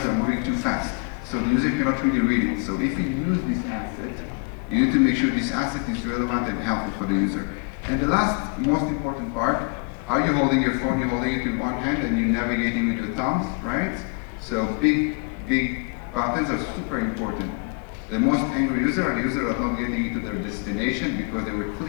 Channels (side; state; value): right; quieter; 35.0 dB